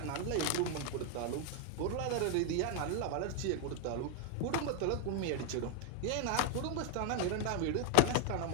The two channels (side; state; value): both; different; correlation 0.00